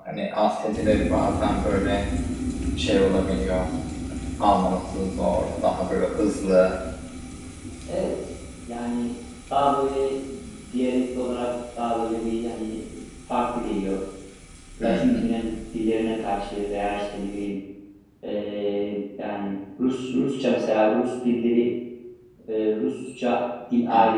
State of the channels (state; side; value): identical; both; correlation 1.00